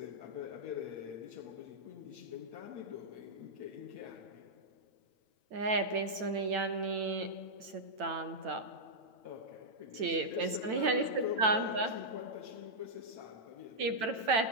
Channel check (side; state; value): left; late; 9.1 ms